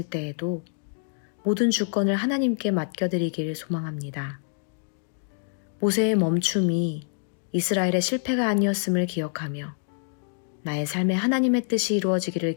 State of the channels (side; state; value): right; silent; digital silence